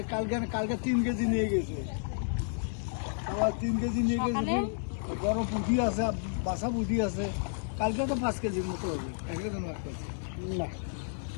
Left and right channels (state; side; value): silent; right; 57 dB below the other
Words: কালকে 3 কেজি নিয়ে গেছে আবার 3 কেজি নিয়ে গেছে বড় পুঁটি আছে বাসা পুঁটি আছে কালকে তো 5 কেজির মতো হবে একদম মাছ পাচ্ছি না